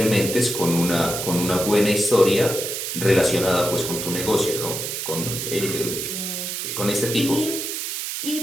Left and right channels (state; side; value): noise; right; hiss, 4 dB below the sound